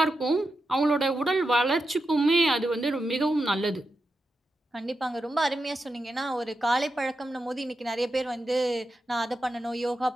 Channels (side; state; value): both; normal; correlation 0.88